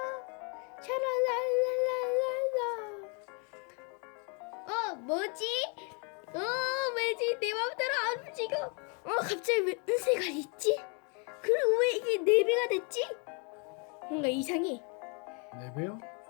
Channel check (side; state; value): right; quieter; 35.5 dB